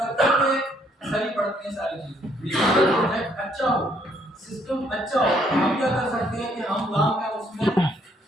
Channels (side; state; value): both; normal; correlation 0.68